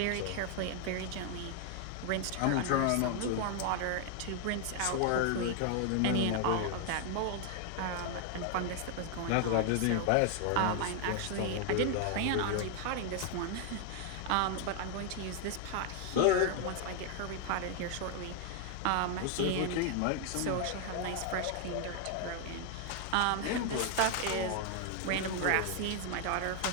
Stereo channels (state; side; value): different; both; correlation 0.00